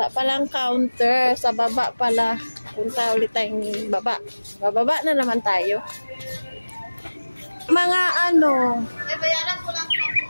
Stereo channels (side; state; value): both; inverted; correlation -1.00